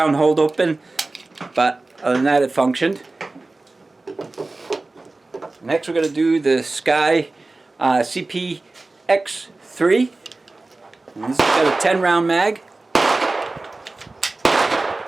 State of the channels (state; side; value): quieter; left; 3.2 dB